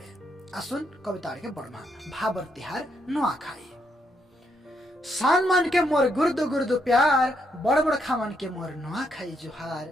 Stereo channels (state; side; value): normal; both; correlation 0.77